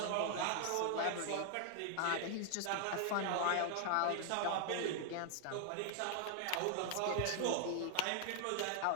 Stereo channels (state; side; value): different; both; correlation 0.00